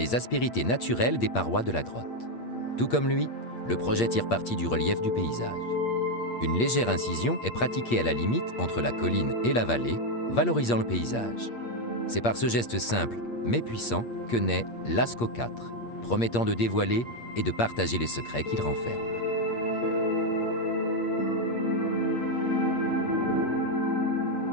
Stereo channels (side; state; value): right; late; 8.5 ms